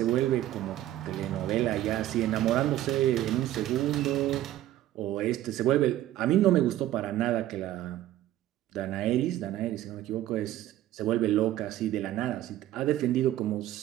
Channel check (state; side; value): quieter; left; 13.7 dB